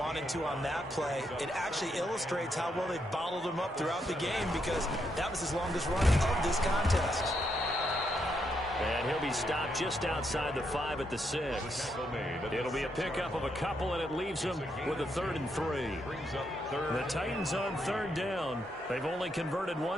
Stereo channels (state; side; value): normal; both; correlation 0.79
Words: to on that play, it actually illustrates how well they bottled him up throughout the game, because that was his longest run of this contest. And he'll be stopped just outside the 5 at the 6. It'll be a pickup of a couple, and it leaves him with a 3rd and 3. The Titans on 3rd down. They've only converted